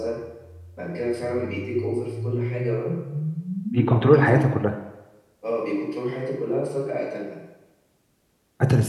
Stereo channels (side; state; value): both; identical; correlation 1.00